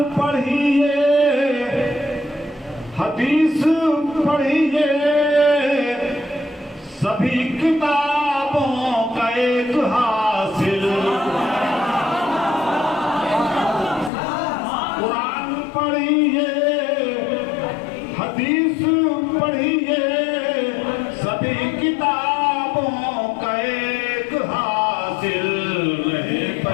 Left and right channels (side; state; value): right; drops out; at 14.1 s